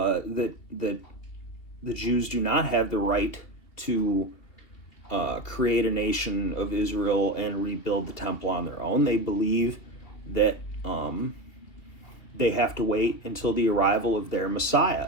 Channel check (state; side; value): late; right; 2.8 ms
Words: the Jews do not have the right to create a nation of Israel and rebuild the temple on their own. They believe that they have to wait until the arrival of their